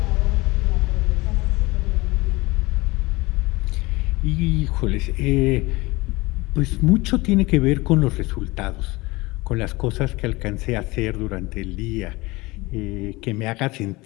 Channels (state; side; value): quieter; right; 22.3 dB